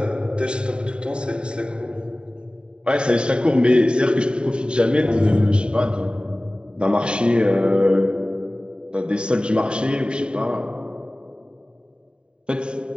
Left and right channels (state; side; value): late; left; 0.050 ms